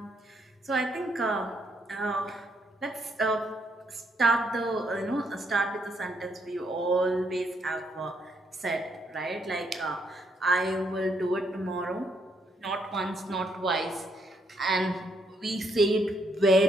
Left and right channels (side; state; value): both; normal; correlation 0.73